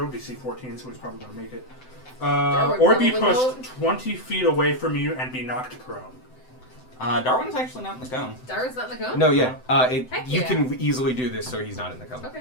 DC 14, so he's probably going to make it. Darwin Or be probably pushed won't. 20 feet away from you and be knocked prone. Darwin's actually not in the cone. Darwin's not in the cone? No, yeah. Heck You yeah. can easily do this, so he's not in the cone.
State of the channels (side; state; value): right; late; 7.8 ms